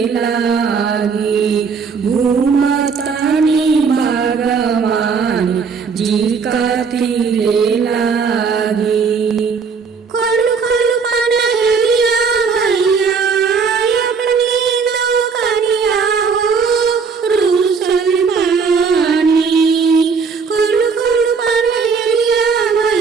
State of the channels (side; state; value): left; quieter; 5.5 dB